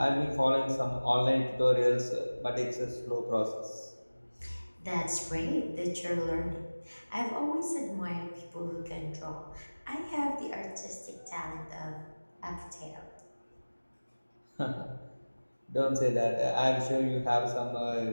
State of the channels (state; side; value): inverted; both; correlation -1.00